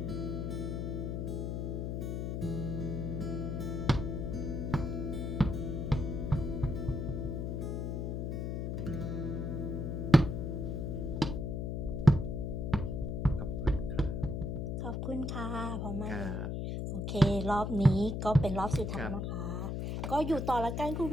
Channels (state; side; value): noise; left; hum, 2 dB below the sound